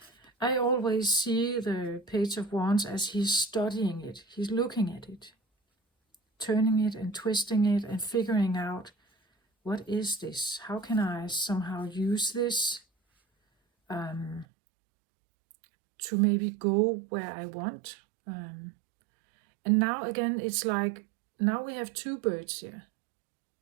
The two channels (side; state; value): left; drops out; at 14.5 s